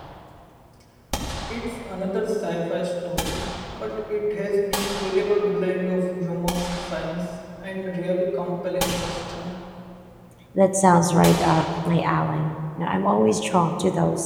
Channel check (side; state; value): both; identical; correlation 1.00